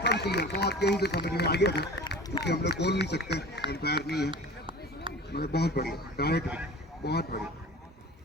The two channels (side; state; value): both; normal; correlation 0.39